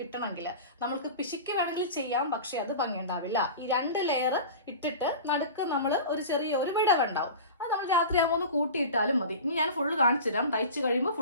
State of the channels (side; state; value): both; inverted; correlation -0.34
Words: നമ്മൾക്ക് പിശുക്ക് വേണമെങ്കിൽ ചെയ്യാം, പക്ഷെ അത് ഭംഗി ഉണ്ടാവില്ല. ഈ 2 ലെയർ ഇട്ടിട്ട് നടുക്ക് നമ്മൾ ഒരു ചെറിയ ഒരു വിടവുണ്ടാവും. അത് നമ്മൾ രാത്രിയാകുമ്പോൾ ഒന്ന് കൂട്ടിയിട്ടാലും മതി. ഇനി ഞാൻ ഫുള്ള് കാണിച്ചു തരാം. തയ്ച്ച് കഴിയുമ്പോൾ